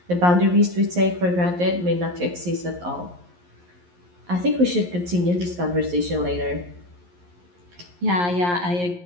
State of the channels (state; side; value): late; left; 11 ms